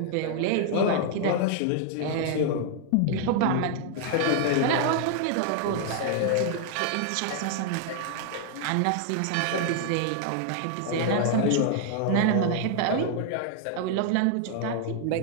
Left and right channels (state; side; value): different; both; correlation 0.00